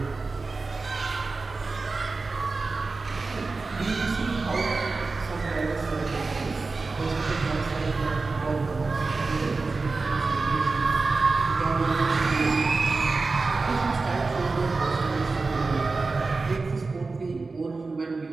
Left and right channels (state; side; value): quieter; left; 3.9 dB